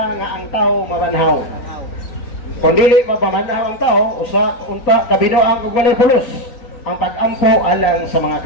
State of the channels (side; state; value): right; late; 3.9 ms